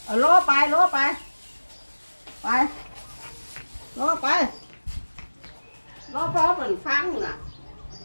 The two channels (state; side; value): inverted; both; correlation -1.00